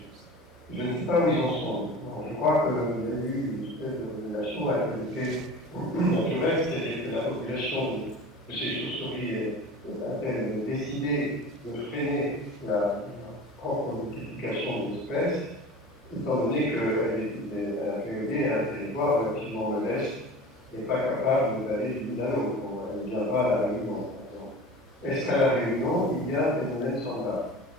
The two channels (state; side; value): normal; both; correlation 0.36